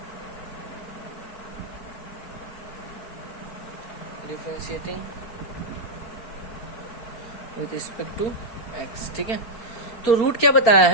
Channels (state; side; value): late; right; 4.3 ms